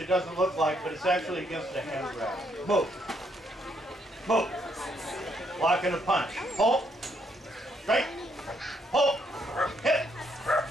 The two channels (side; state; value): both; normal; correlation 0.73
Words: doesn't look like, but it's actually against a hand grab. Move. Move. Block and a punch. Pull. Straight. Pull. Hit.